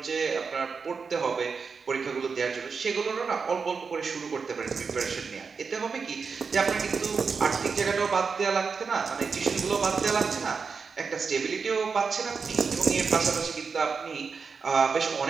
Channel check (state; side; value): quieter; left; 5.3 dB